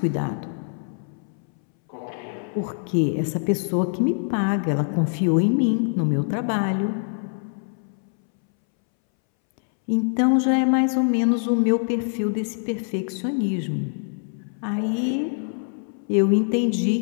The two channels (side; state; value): right; silent; 63 dB below the other